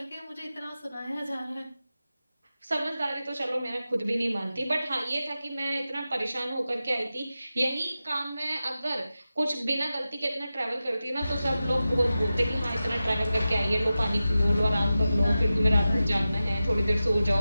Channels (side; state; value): both; inverted; correlation -0.93